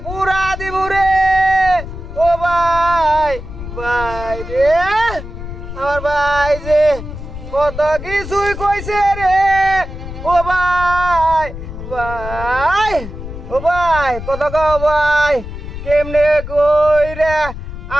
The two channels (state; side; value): noise; left; rumble, 10 dB below the sound